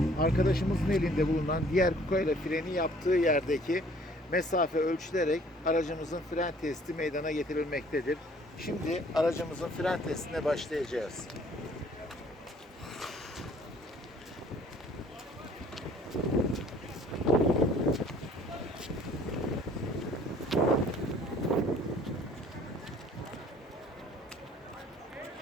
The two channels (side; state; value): both; normal; correlation 0.56